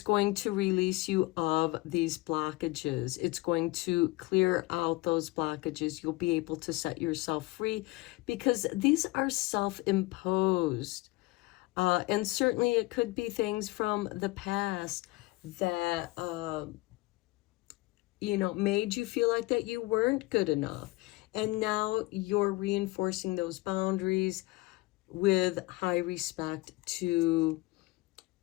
to release you of these blockages. It's going to clear out those blockages. You'll be able to set yourself free because these are self-imposed. And certainly it could be things from the past that, made you feel like that you weren't good enough. And now you're reinforcing those boundaries with high respect to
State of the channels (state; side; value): quieter; right; 21.2 dB